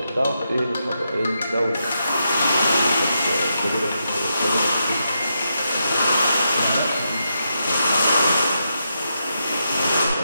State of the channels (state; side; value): inverted; both; correlation -0.83